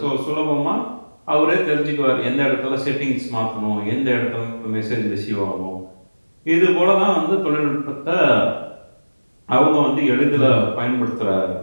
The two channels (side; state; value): both; inverted; correlation -1.00